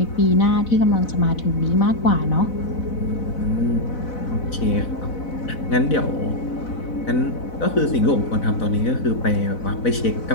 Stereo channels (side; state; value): right; late; 4.0 ms